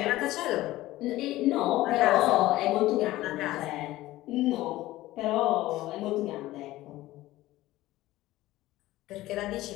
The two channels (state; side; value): quieter; right; 16.6 dB